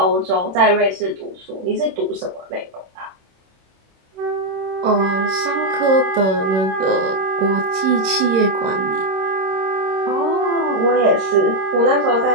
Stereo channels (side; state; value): left; late; 26 ms